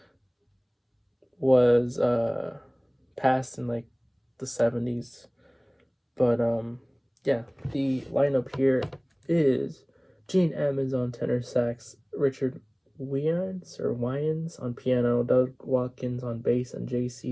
was passed in the 70s, but yeah, the lineup here is Gene Ammons on tenor sax, Richard Wyans on piano, Doug Watkins on bass, and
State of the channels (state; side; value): identical; both; correlation 1.00